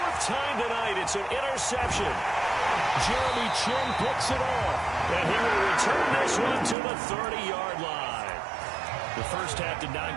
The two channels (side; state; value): left; drops out; at 6.8 s